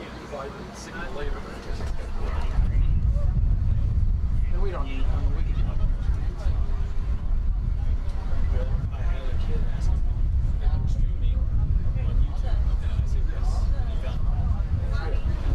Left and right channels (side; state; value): both; identical; correlation 1.00